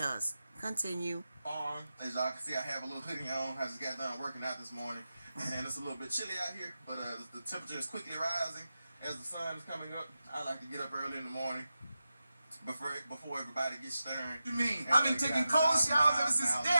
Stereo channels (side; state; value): both; inverted; correlation -0.92